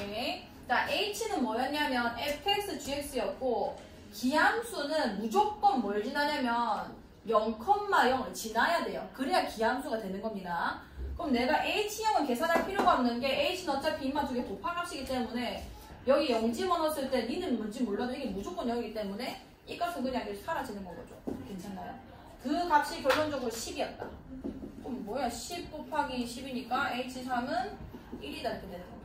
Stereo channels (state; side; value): identical; both; correlation 1.00